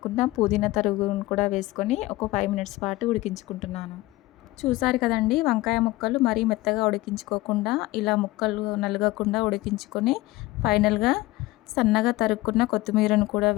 పుదీనా తరుగును కూడా వేసుకొని ఒక 5 మినిట్స్ పాటు ఉడికించుకుంటున్నాను. చూసారు కదండి, వంకాయ ముక్కలు మరీ మెత్తగా ఉడికించుకోకుండా ఇలా ముక్కలు నలగకుండా ఉడికించుకొని ఫైనల్గా సన్నగా తరుక్కున్న కొత్తిమీరను కూడా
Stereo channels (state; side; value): quieter; right; 18.9 dB